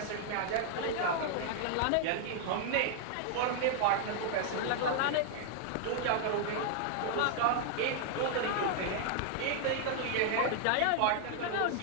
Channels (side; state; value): both; different; correlation 0.00